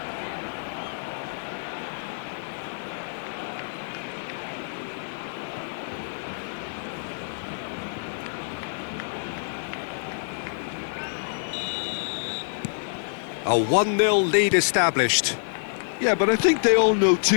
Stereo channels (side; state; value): right; silent; digital silence